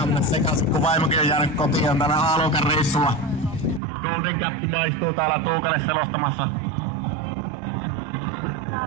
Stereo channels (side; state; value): left; drops out; at 3.8 s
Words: mennä sekaisin, kun vaimokin on jäänyt kotiin tänä A-luokan reissulla. Golden Cap maistuu täällä Tuukalle selostamassa.